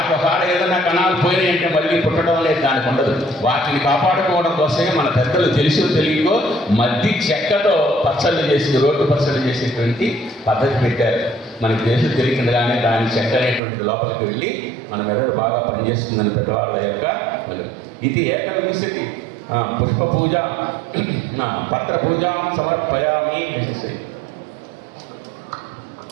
ఒకవేళ ఏదైనా కణాలు పోయినాయి అంటే మళ్ళీ పుట్టడం లేదు, దానికి ఉండదు. వాటిని కాపాడుకోవడం కోసమే మన పెద్దలు తెలుసో తెలియకో మద్ది చెక్కతో పచ్చళ్ళు చేసి, రోడ్డు పచ్చళ్ళు చేసేటువంటి పద్ధతి పెట్టారు. మనకి తెలుసు తెలియకుండానే దాని చెక్క అనేటువంటి లోపలికి వెళ్ళి మన మెదడు బాగా పనిచేస్తుందని పెద్దవాళ్ళ యొక్క ఇది. ఏకవింశతి పుష్ప పూజ పత్ర పూజ సమర్పయామి.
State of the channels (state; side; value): drops out; left; at 13.6 s